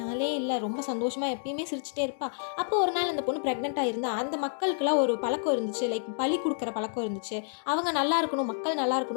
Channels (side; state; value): right; silent; digital silence